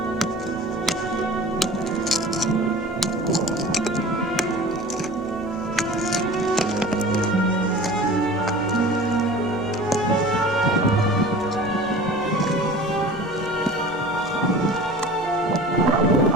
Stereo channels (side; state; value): both; normal; correlation 0.40